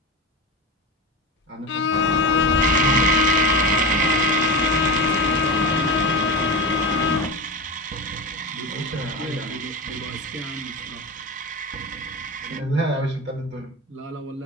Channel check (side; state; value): both; normal; correlation 0.23